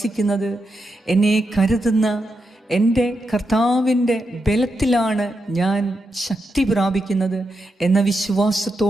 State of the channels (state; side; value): normal; both; correlation 0.85